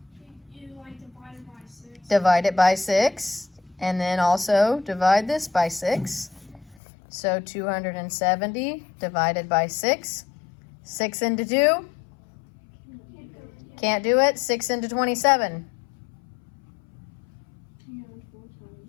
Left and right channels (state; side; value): drops out; right; at 6.8 s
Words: You like divide it by 6. Divide it by 6. And then also divide this by 6. So 270 divided by 6. 6 into 2. Can't do it. 6 into 27.